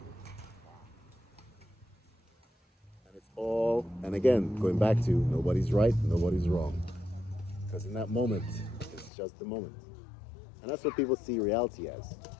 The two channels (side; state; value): right; drops out; at 9.1 s